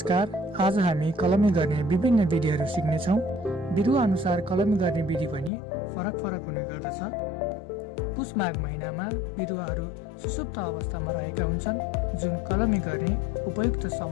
आज हामी कलमी गर्ने विभिन्न विधिहरू सिक्नेछौँ। बिरुवा अनुसार कलमी गर्ने विधि पनि फरक हुने गर्दछ। पुष माघ महिनामा बिरुवाहरू सुसुप्त अवस्थामा रहेका हुन्छन्, जुन कलमी गर्ने उपयुक्त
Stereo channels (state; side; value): drops out; right; at 5.5 s